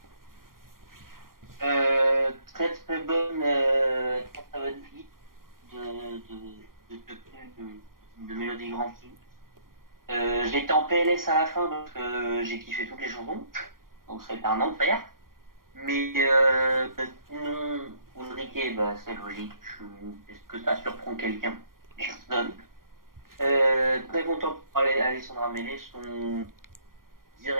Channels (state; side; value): late; left; 0.91 ms